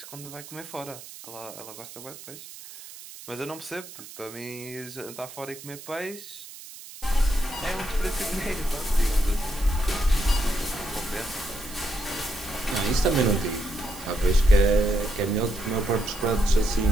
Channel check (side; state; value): right; noise; hiss, 15 dB below the sound